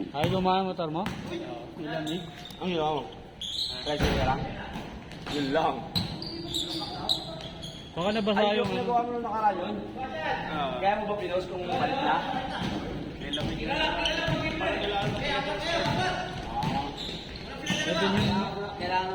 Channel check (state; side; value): identical; both; correlation 1.00